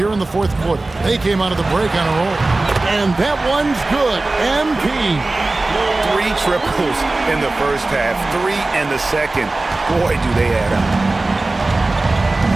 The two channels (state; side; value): quieter; left; 3.1 dB